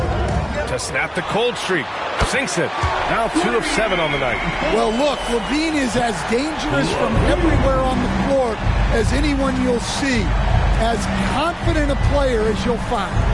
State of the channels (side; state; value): both; identical; correlation 1.00